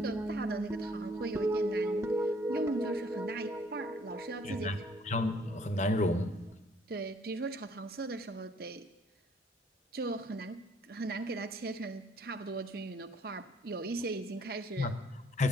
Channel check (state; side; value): normal; both; correlation 0.62